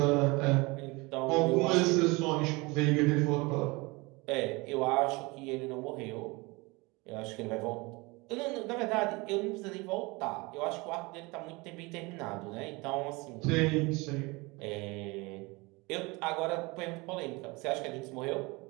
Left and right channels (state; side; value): quieter; left; 25.0 dB